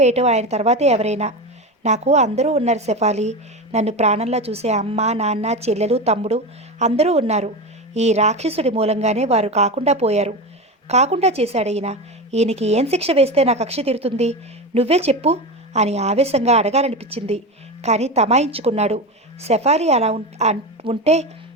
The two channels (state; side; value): normal; both; correlation 0.21